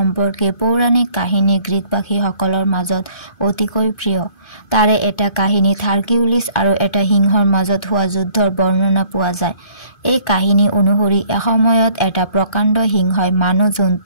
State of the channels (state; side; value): late; right; 2.5 ms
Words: পৌৰাণিক কাহিনী গ্ৰীকবাসীসকলৰ মাজত অতিকৈ প্ৰিয়। তাৰে এটা কাহিনীত হাৰকিউলিছ আৰু এটা সিংহৰ মাজত হোৱা যুদ্ধৰ বৰ্ণনা পোৱা যায়। এই কাহিনী অনুসৰি এসময়ত এটা প্ৰকাণ্ড সিংহই মানুহ